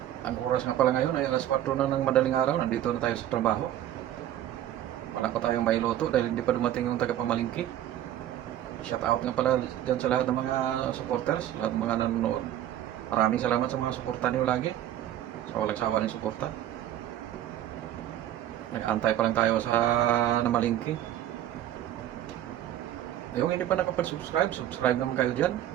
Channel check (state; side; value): quieter; left; 12.2 dB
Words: Ang oras nga pala ngayon ay alas 4 na ng madaling araw. Nandito na tayo sa trabaho. Wala pa tayong mailuto dahil hindi pa dumating yung tagapamalingki. Shout out nga pala dyan sa lahat ng mga supporters, lahat ng mga nanonood. Maraming salamat sa mga suporta niyo lagi. Sa walang sawa ng suporta. Nag-antay pa lang tayo sa namalingki. Yung hindi pa nakapag-subscribe, subscribe naman kayo dyan.